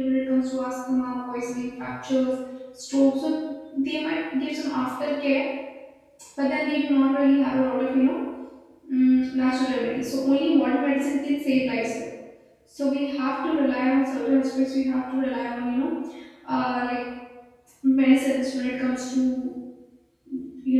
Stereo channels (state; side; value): identical; both; correlation 1.00